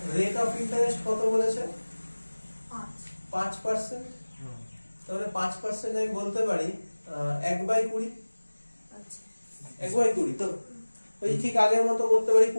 রেট অফ ইন্টারেস্ট কত বলেছে? 5%। তাহলে 5% আমি বলতে পারি 1/20। আচ্ছা 1/20 তো ওই ঠিক আগের মতো করতে পারি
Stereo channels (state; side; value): inverted; both; correlation -1.00